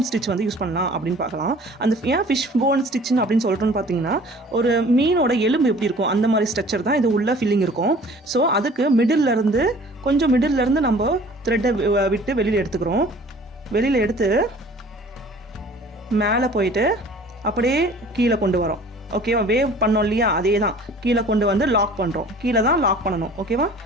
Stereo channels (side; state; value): both; normal; correlation 0.49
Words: ஸ்டிச் வந்து யூஸ் பண்ணலாம் அப்படின்னு பார்க்கலாம். ஏன் ஃபிஷ் போன் ஸ்டிச்னு அப்படின்னு சொல்கிறோன்னு பார்த்தீங்கன்னா, ஒரு மீனோட எலும்பு எப்படி இருக்கும் அந்த மாதிரி ஸ்ட்ரக்சர் தான் இது உள்ள ஃபில்லிங் இருக்கும். ஸோ அதுக்கு மிடில்லேருந்து நம்ம த்ரெட்டை விட்டு வெளியில் எடுத்துக்கிறோம். வெளியில் எடுத்து மேலே போயிட்டு அப்படியே கீழே கொண்டு வரோம். ஓகேவா? வேவ் பண்ணோம் இல்லையா, அதே தான் கீழே கொண்டு வந்து லாக் பண்ணுறோம். கீழே தான் லாக் பண்ணணும். ஓகேவா?